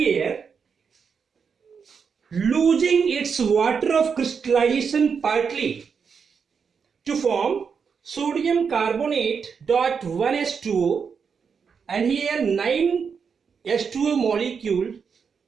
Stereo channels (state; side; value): quieter; left; 6.2 dB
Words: losing its water of crystallization partly to form sodium carbonate .1S2O, and here 9S2O molecule